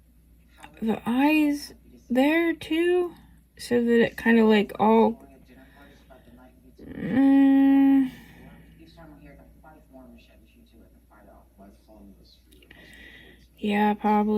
The eyes there too? So that it kind of like all... yeah,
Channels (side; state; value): both; identical; correlation 1.00